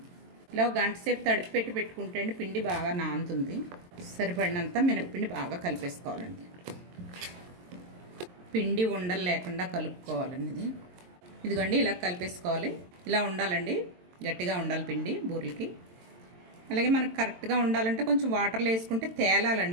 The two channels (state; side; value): late; left; 22 ms